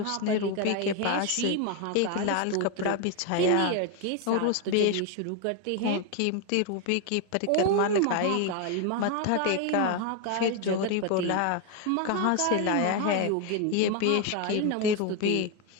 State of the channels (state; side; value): different; both; correlation 0.01